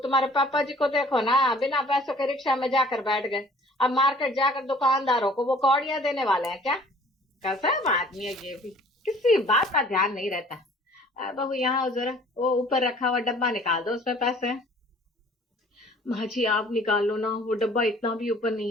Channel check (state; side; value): normal; both; correlation 0.53